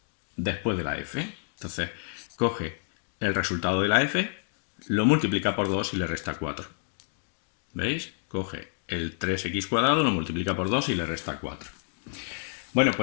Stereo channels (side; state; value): right; silent; 59 dB below the other